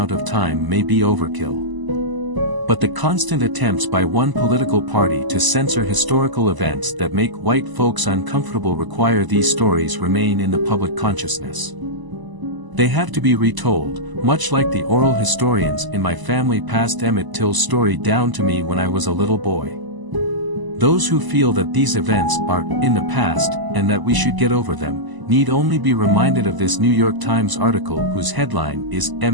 of time may be overkill. But the constant attempts by one political party to censor historical events that make white folks uncomfortable require these stories remain in the public consciousness. They have to be retold, much like the oral historians in my family passed Emmett Till's story down to me when I was a little boy. Those who feel that these events are in the past and that we should get over them, need only be reminded of this New York Times article whose headline is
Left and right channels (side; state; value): left; late; 1.0 ms